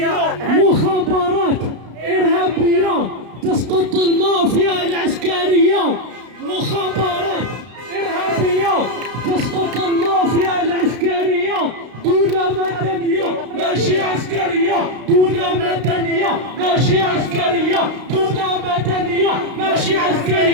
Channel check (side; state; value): left; late; 32 ms